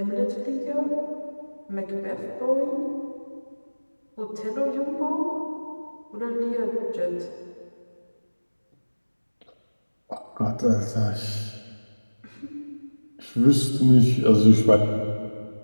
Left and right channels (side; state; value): both; inverted; correlation -1.00